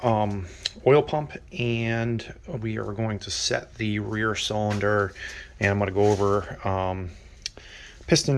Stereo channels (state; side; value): identical; both; correlation 1.00